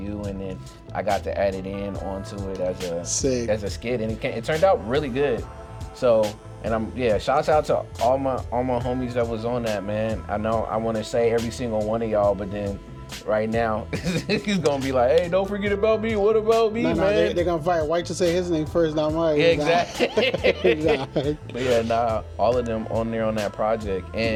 and then I got to add it in onto it as a skit, and it turned out really good. So, and shouts out to all my homies that was on that, man. I know I want to say every single one of y'all, but then right now he's gonna be like, hey, don't forget about me. What about me, man? They're gonna fight White to say his name first, not mine. Yeah, exactly. But all of them on there on that project.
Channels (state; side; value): identical; both; correlation 1.00